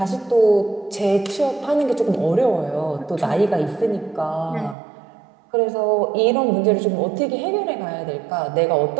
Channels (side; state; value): left; drops out; at 4.8 s